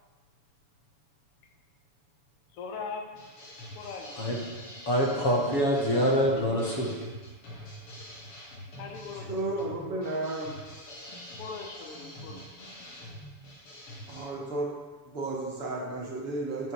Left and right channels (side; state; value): right; late; 7.0 ms